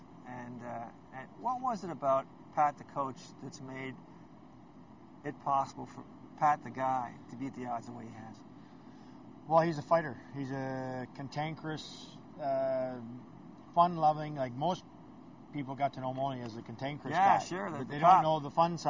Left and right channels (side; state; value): both; identical; correlation 1.00